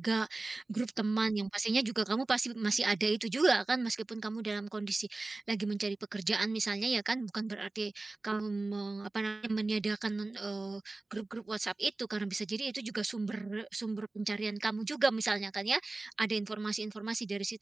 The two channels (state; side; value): quieter; left; 3.2 dB